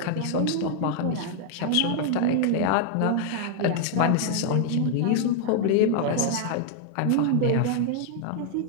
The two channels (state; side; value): different; both; correlation 0.00